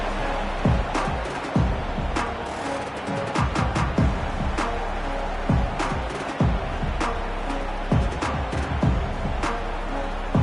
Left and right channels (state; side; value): identical; both; correlation 1.00